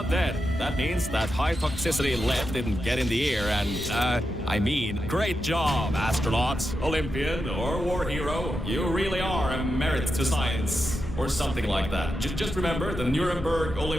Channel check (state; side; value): normal; both; correlation 0.88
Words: dead. That means that high toxicity lead didn't get in the air and, great job, astronaut, Olympian, or war hero. You really are a merit to science. Or something like that. Just remember the Nuremberg